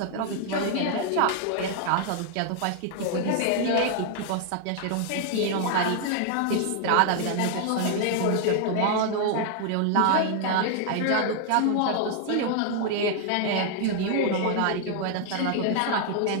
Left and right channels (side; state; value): both; different; correlation 0.00